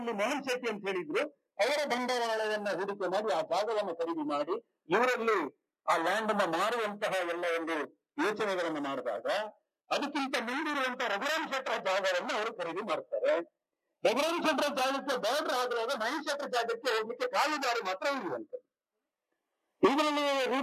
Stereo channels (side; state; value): both; identical; correlation 1.00